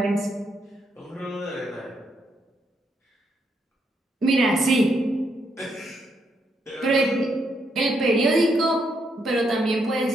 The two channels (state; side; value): normal; both; correlation 0.77